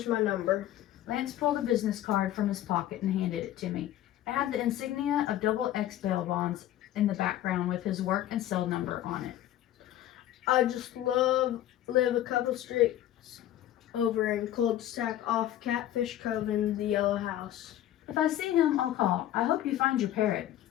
my number. Lance pulled a business card from his pocket and handed it to me. It had the insignia of XX bail bonds in the background with his work and cell number on it. I just live a couple streets over in cul-de-sac off Catfish Cove in the Yellow House. If I see him, I'll call. I hope you find your parrot.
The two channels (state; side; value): quieter; right; 12.8 dB